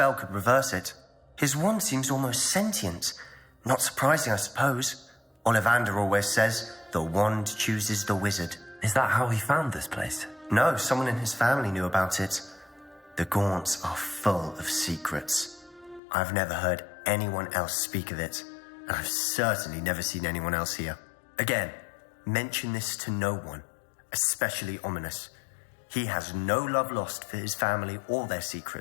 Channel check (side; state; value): right; drops out; at 16.0 s